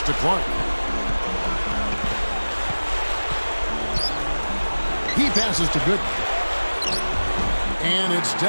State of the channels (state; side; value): inverted; both; correlation -1.00